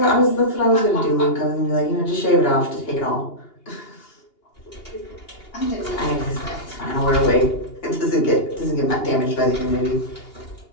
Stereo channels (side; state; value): right; late; 2.8 ms